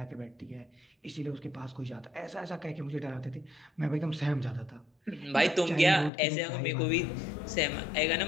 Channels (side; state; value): right; drops out; at 6.1 s